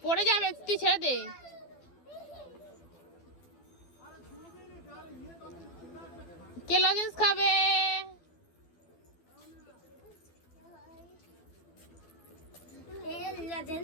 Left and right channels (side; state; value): right; late; 12 ms